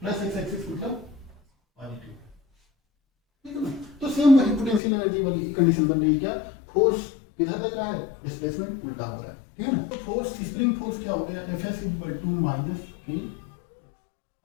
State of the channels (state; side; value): drops out; right; at 4.8 s